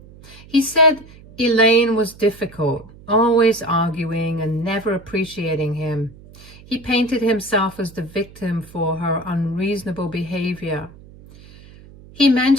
He said Elaine was difficult, always arguing and never appreciating him. He painted himself as the victim for her unreasonable behavior. He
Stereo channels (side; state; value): right; noise; hum, 21 dB below the sound